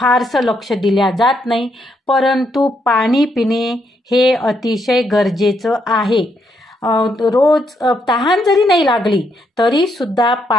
लक्ष दिल्या जात नाही. परंतु पाणी पिणे हे अतिशय गरजेचं आहे. रोज तहान जरी नाही लागली तरी सुद्धा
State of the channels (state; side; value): normal; both; correlation 0.76